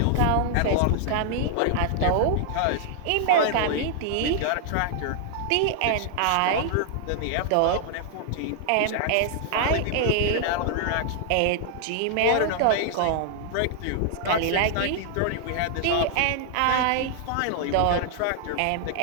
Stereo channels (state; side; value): different; both; correlation 0.00